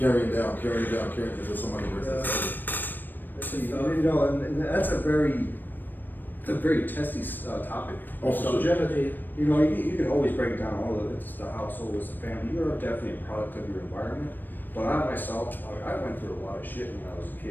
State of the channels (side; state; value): right; late; 0.092 ms